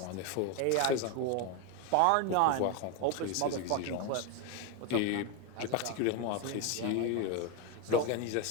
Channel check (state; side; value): different; both; correlation 0.02